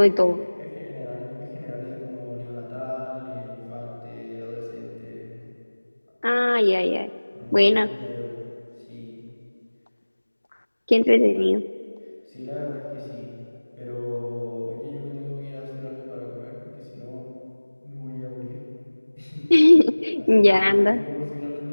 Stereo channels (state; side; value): inverted; both; correlation -1.00